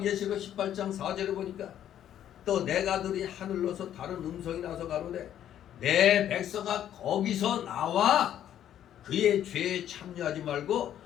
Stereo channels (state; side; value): quieter; right; 10.8 dB